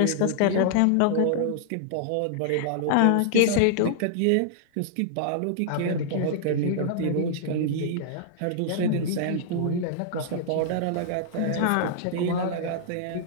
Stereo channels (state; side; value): different; both; correlation -0.01